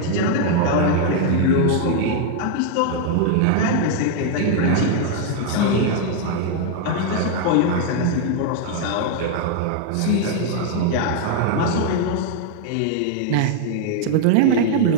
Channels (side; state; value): both; different; correlation 0.00